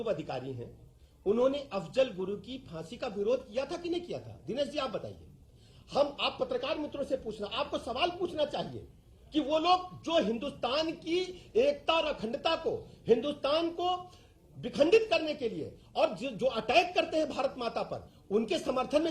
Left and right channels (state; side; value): identical; both; correlation 1.00